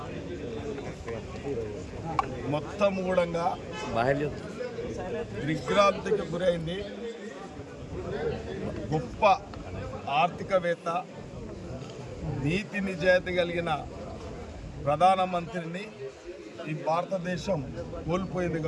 మొత్తం కూడా దిగ్భ్రాంతికి గురైంది. గొప్ప ఆర్థికవేత్త, నీతి నిజాయితీ కలిగిన ప్రధానమంత్రిని ఈ భారతదేశం కోల్పోయింది.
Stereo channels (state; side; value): identical; both; correlation 1.00